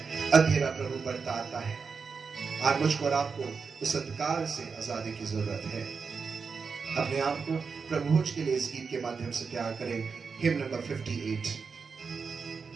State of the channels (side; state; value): left; quieter; 5.3 dB